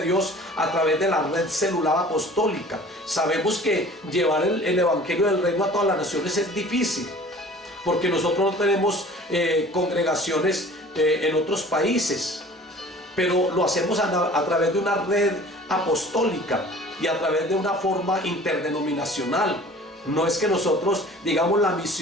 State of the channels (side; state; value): both; normal; correlation 0.46